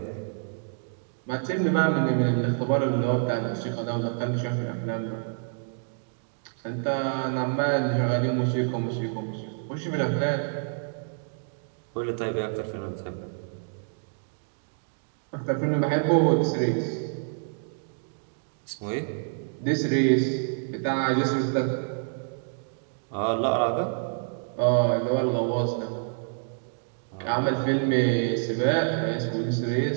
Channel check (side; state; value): left; silent; digital silence